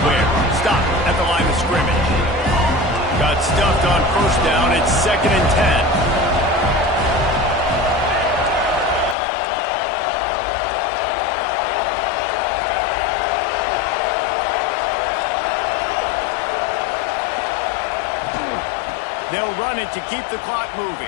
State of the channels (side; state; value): right; drops out; at 9.2 s